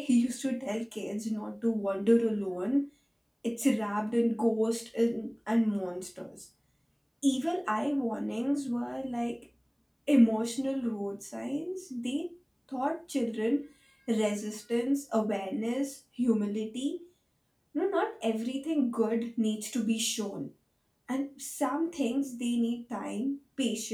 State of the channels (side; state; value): both; identical; correlation 1.00